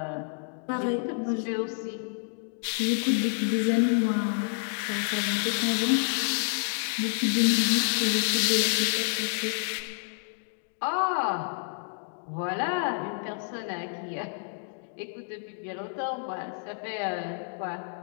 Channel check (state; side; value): silent; right; digital silence